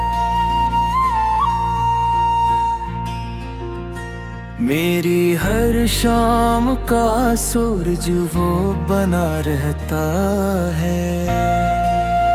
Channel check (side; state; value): both; identical; correlation 1.00